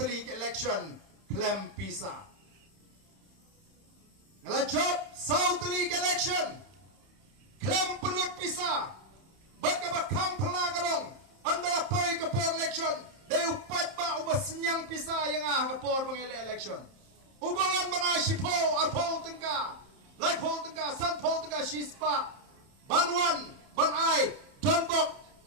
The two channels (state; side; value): late; left; 31 ms